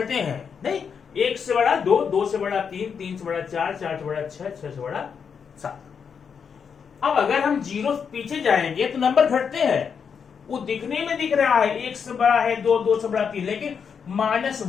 हैं। नहीं, 1 से बड़ा 2, 2 से बड़ा 3, 3 से बड़ा 4, 4 से बड़ा 6, 6 से बड़ा 7। अब अगर हम 0 पीछे जाएंगे तो नंबर घटते हैं। वो दिखने में दिख रहा है 1 से बड़ा है 2, 2 से बड़ा 3, लेकिन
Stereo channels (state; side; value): quieter; right; 6.6 dB